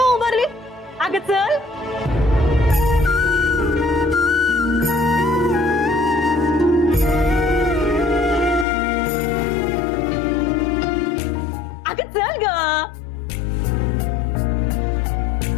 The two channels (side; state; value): right; drops out; at 8.7 s